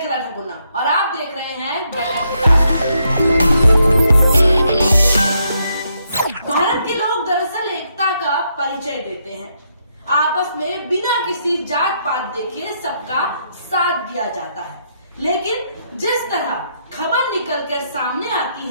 ठकुना और आप देख रहे हैं भारत के लोग दरअसल एकता का परिचय देते हैं। आपस में बिना किसी जात पात देखे सबका साथ दिया जाता है, लेकिन जिस तरह खबर निकलकर सामने आती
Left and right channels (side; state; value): both; inverted; correlation -0.77